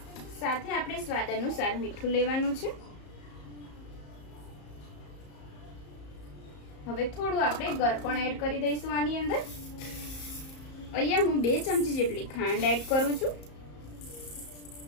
સાથે આપણે સ્વાદ અનુસાર મીઠું લેવાનું છે। હવે થોડું આપણે ગળપણ એડ કરી દઈશું આની અંદર। અહીંયા હું 2 ચમચી જેટલી ખાંડ એડ કરું છું।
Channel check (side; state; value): right; late; 34 ms